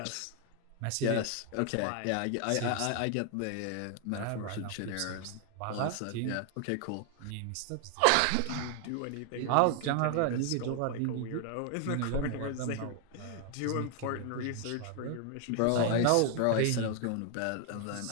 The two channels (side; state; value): both; different; correlation 0.00